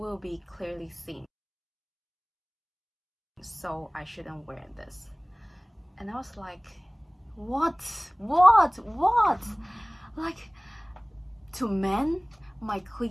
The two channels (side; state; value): both; identical; correlation 1.00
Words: be clearly seen. So I shouldn't wear this. And I was like, what? Like, to men, my